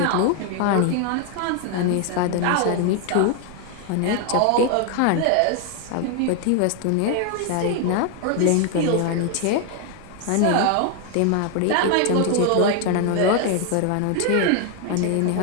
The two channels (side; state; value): both; different; correlation 0.00